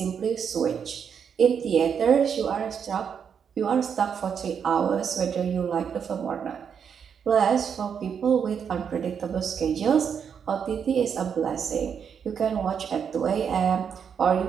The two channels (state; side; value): quieter; left; 7.3 dB